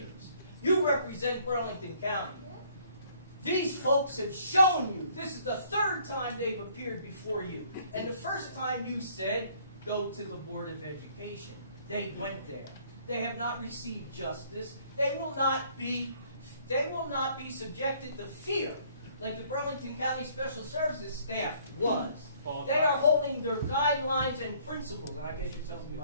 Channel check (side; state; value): both; inverted; correlation -0.61